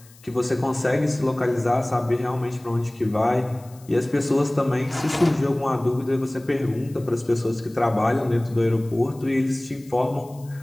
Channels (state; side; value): noise; left; hiss, 25 dB below the sound